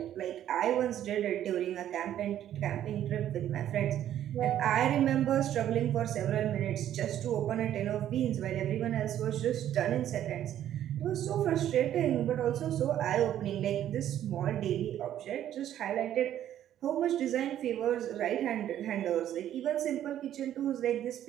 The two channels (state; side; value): quieter; left; 11.3 dB